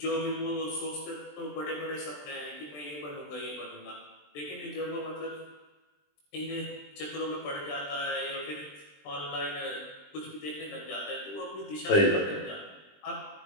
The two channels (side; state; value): right; late; 20 ms